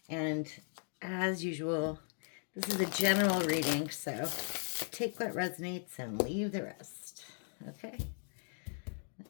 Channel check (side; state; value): right; silent; 53 dB below the other